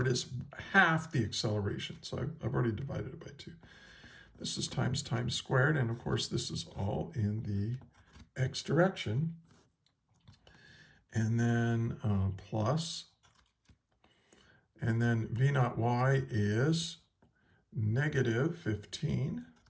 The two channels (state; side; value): identical; both; correlation 1.00